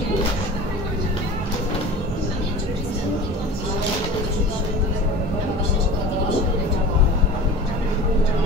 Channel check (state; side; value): normal; both; correlation 0.37